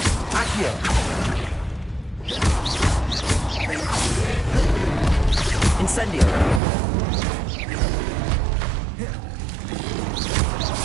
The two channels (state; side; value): drops out; left; at 6.6 s